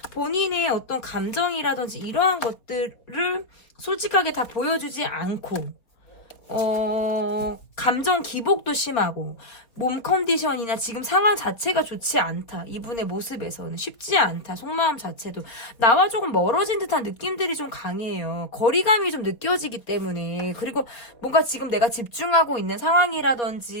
본인의 어떤 감정이라든지 이러한 것들을 솔직하게 다 보여주지 않고, 감정 기복도 심하고, 몸 컨디션이나 지금 상황 자체가 좋지 않다. 이분의 모습에서는 쉽지 않다. 속마음 자체도 나와 조금 멀어진 듯한 느낌들이 좀 강해요. 거리감이 좀 느껴지기 때문에. 그리고 뭔가 지금 내가 집중하고 있는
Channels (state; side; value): late; right; 4.0 ms